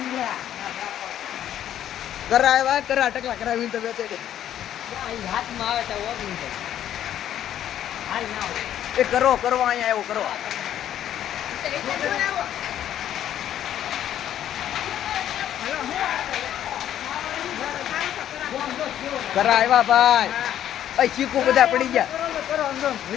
કરાવ્યા કરા ટકલા કરાવી તો બેઠે હાથમાં આવે તો હાલ ના એ કરો અહીંયા એવો કરો કરા આવ્યા ભાઈ અ ચીકુ બધા પડી ગયા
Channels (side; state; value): right; quieter; 11.0 dB